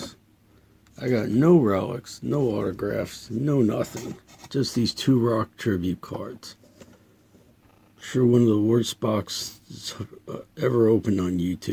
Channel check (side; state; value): both; identical; correlation 1.00